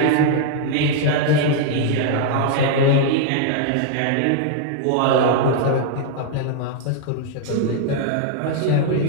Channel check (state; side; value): different; both; correlation 0.00